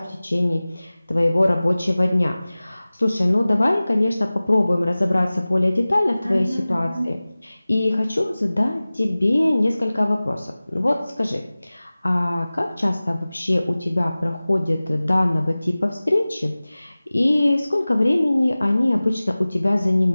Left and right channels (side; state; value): both; inverted; correlation -0.98